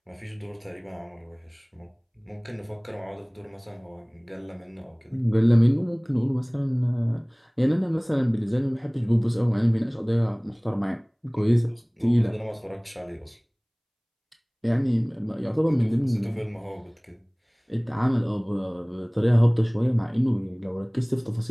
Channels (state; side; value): identical; both; correlation 1.00